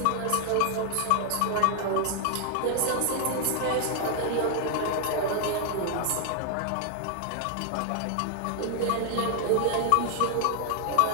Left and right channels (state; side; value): different; both; correlation 0.00